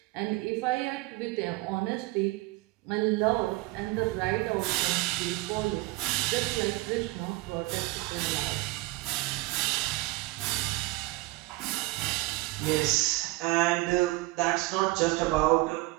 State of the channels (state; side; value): quieter; left; 20.6 dB